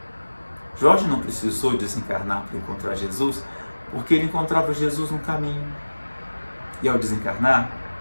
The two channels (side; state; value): both; inverted; correlation -1.00